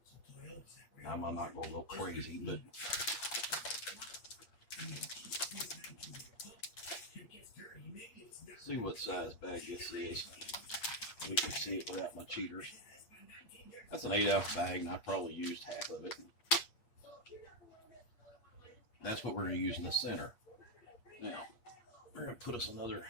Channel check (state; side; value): late; right; 8.5 ms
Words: I'm not gonna go crazy, but see what size bag this is. We can see it without my cheaters. That's an 8-ounce bag, and I probably used half of it. That's what we're going to use in the center. Now, we're going to put us another